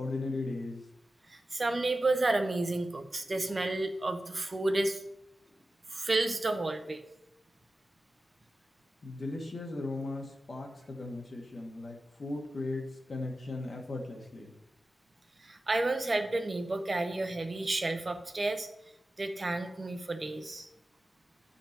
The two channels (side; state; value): both; normal; correlation 0.94